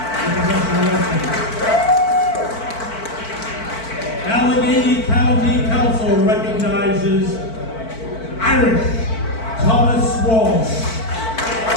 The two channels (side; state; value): right; late; 4.5 ms